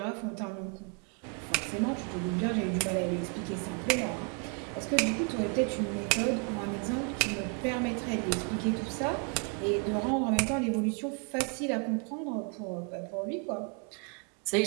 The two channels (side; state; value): left; quieter; 35.6 dB